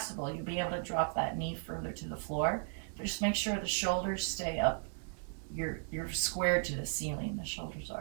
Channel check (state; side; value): silent; left; 54 dB below the other